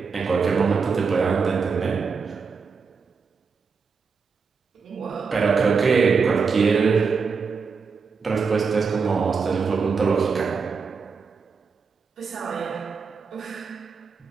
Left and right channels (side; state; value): left; quieter; 5.3 dB